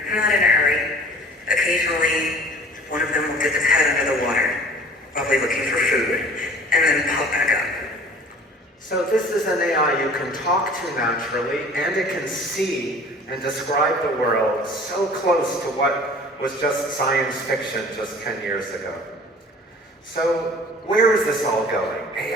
not in a hurry. Occasionally, one of them will dip its head under the water, probably looking for food, and then pop back up. So this is an AI you can talk to naturally, and it can see and describe the world so close to what was just science fiction just 10 years ago. So where is this all going?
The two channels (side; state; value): both; normal; correlation 0.47